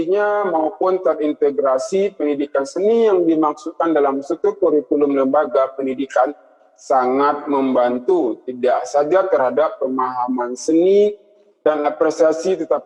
maupun terintegrasi, pendidikan seni yang dimaksudkan dalam suatu kurikulum lembaga pendidikan sangat membantu tidak saja terhadap pemahaman seni dan apresiasi,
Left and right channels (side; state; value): both; identical; correlation 1.00